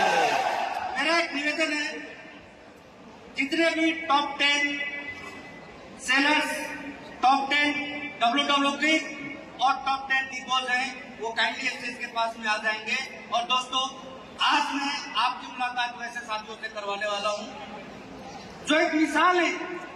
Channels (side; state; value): both; identical; correlation 1.00